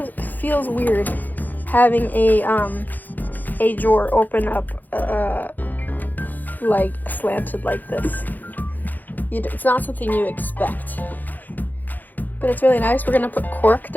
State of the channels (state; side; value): late; right; 0.084 ms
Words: weird having a drawer open up like slanted like this. It's not something you expect, but it's really nice. We're gonna put cork